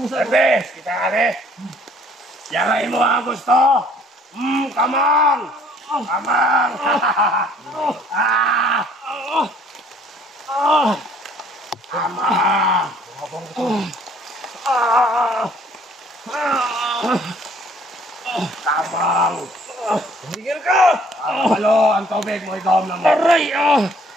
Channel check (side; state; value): both; normal; correlation 0.59